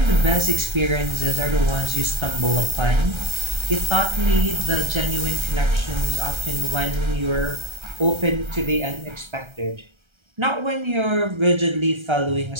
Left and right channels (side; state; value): left; late; 1.3 ms